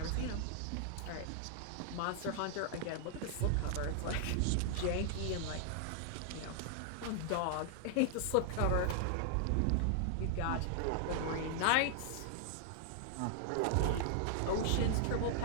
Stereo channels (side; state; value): both; different; correlation -0.01